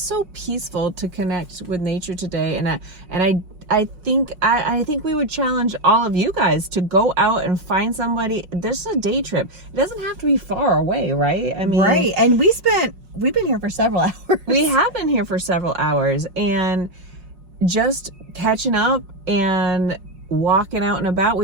so peaceful to connect with nature today, and I think we would challenge all of you guys to go out and find somebody. This is a day trip. It doesn't have to be far away, right? I mean, right. And we've been here for several hours. We have been here for several hours, and just catching up and walking out and about.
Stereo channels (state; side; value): late; left; 5.5 ms